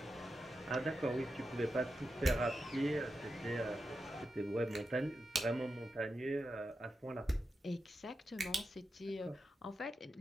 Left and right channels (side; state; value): both; normal; correlation 0.89